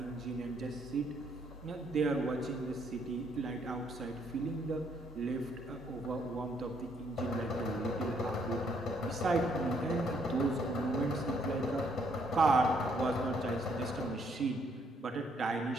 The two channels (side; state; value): both; normal; correlation 0.69